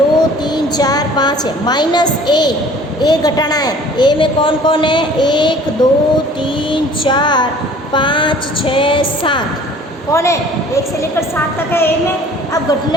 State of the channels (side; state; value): both; normal; correlation 0.50